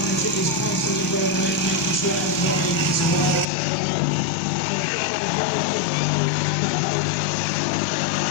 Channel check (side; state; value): right; drops out; at 3.5 s